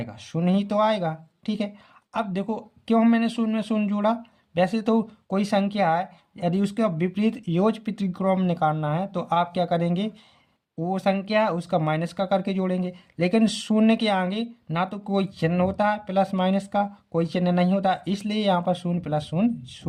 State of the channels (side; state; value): both; identical; correlation 1.00